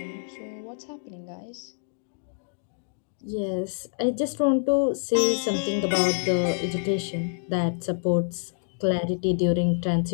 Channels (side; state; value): right; silent; 60 dB below the other